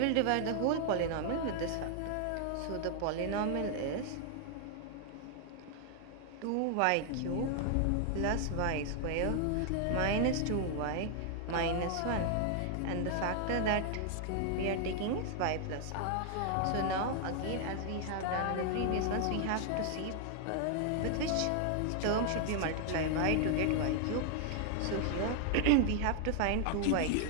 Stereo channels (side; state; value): both; different; correlation 0.00